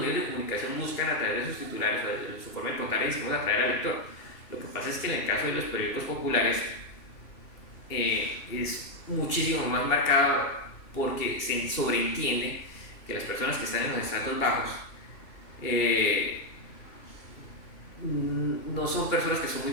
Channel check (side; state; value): right; late; 2.8 ms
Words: de comunicación buscan a través de sus titulares o de su forma de contar y decimos atraer al lector. Lo que pasa es que en el caso de los periódicos populares es muchísimo más marcado porque se sobreentiende que las personas que están en los estratos bajos no son personas que son muy